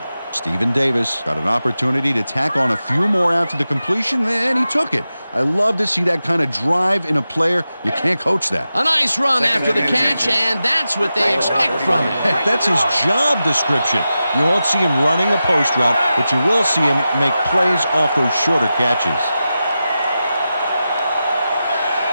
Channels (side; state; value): both; inverted; correlation -0.92